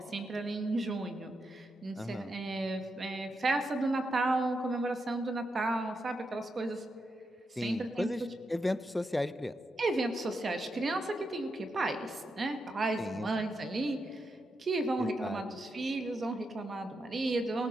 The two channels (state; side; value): normal; both; correlation 0.85